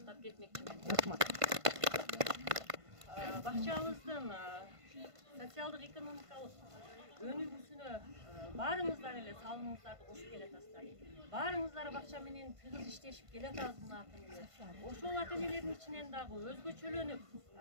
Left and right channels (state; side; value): late; left; 1.5 ms